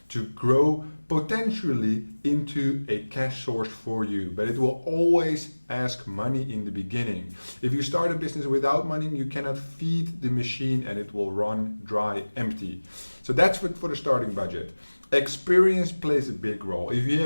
to grow potentially into a cash source for you, but it will always ask money in the beginning. If you start a business without money, you cannot feed the machine and it will run dry empty. So that's for the starting budget. Experience plays a big role. If you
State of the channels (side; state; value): both; inverted; correlation -1.00